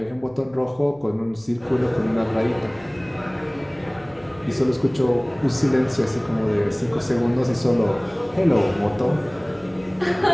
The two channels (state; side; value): noise; right; hum, 27 dB below the sound